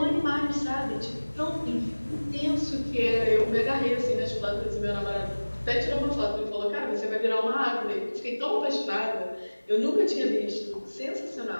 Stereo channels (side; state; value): both; inverted; correlation -1.00